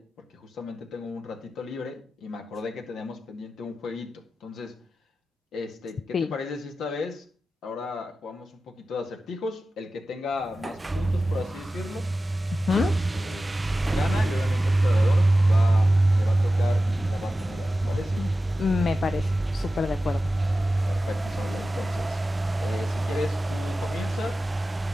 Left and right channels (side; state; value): both; normal; correlation 0.94